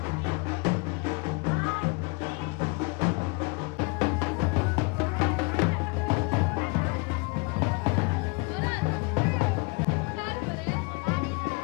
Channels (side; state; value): right; quieter; 29.9 dB